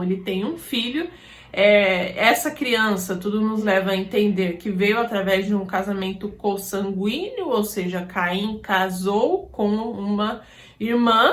ele tem um filho. Essa criança, tudo nos leva a entender que veio através de um casamento consanguíneo, ou seja, Caim casou com uma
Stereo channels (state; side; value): identical; both; correlation 1.00